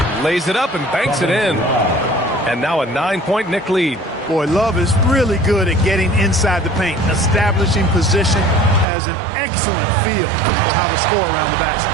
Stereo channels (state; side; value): drops out; left; at 8.8 s